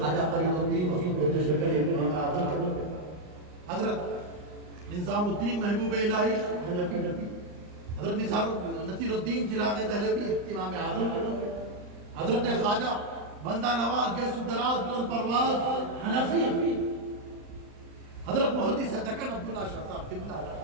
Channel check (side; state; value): left; late; 39 ms